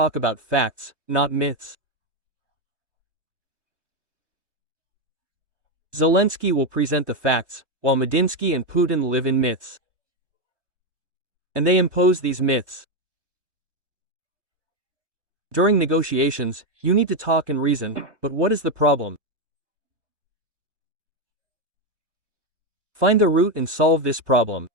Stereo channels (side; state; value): left; late; 1.2 ms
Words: about facts, not myths. Zelensky will present the facts, while Medinsky and Putin live in myths. And they impose these myths. During negotiations, you need to talk and reason, but what is the problem? Find the root and solve this problem.